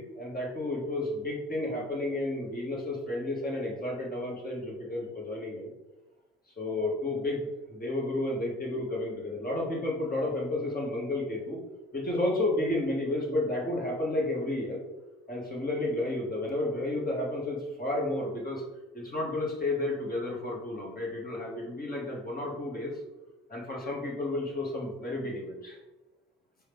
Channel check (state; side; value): normal; both; correlation 0.46